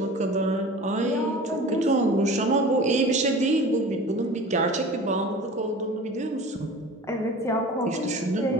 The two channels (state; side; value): normal; both; correlation 0.39